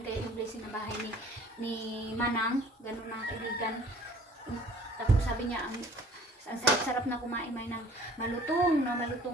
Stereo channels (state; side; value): normal; both; correlation 0.52